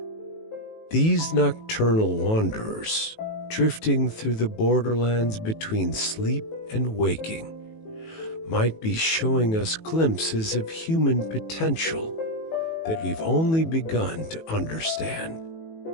These nocturnal wanderers, drifting through the borderlands between sleep and waking, might be showing us glimpses of human potential that we've only begun to understand.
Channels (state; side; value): late; right; 18 ms